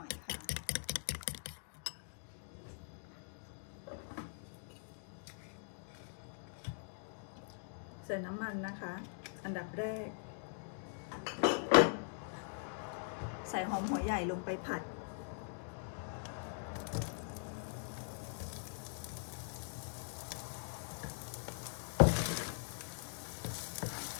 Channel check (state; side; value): silent; right; digital silence